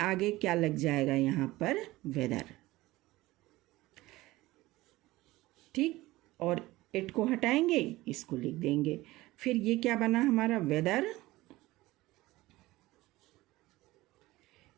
क्या लग जाएगा यहाँ पर, वेदर। ठीक, और इट को हटाएंगे, इसको लिख देंगे। फिर ये क्या बना हमारा, weather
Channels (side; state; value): left; quieter; 18.5 dB